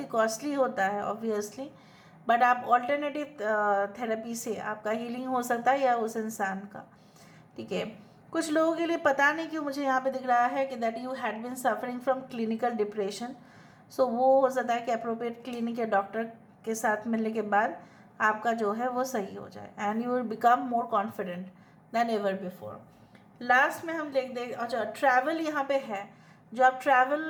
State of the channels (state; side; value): identical; both; correlation 1.00